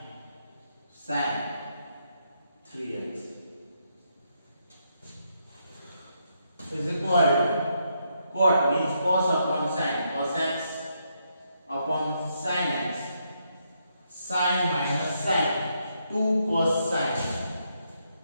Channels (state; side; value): inverted; both; correlation -0.78